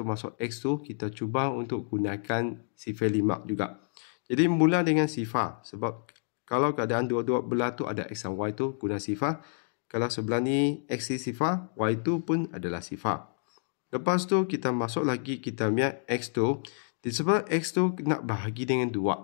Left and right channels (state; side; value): silent; right; digital silence